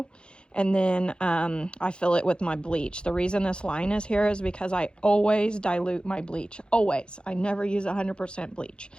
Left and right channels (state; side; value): late; right; 0.052 ms